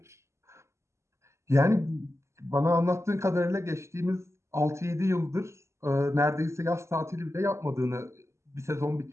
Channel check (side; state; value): left; late; 0.13 ms